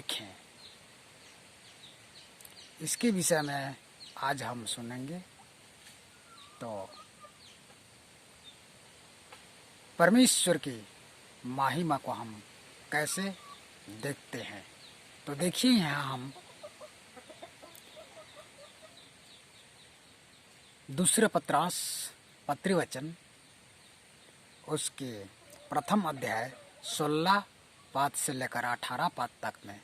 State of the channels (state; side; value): identical; both; correlation 1.00